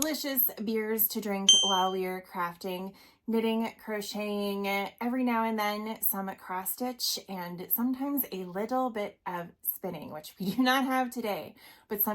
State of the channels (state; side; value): identical; both; correlation 1.00